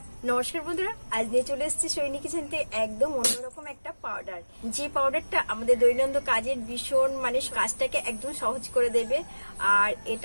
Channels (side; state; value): both; inverted; correlation -1.00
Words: নমস্কার বন্ধুরা, আজ নিয়ে চলে এসেছি সৈনী কিচেন থেকে একদম অন্যরকম একটা পাউডার, যে পাউডারটা আমাদের দৈনন্দিন কাজের ভীষণ কাজটাকে একদম সহজ করে দেবে। আর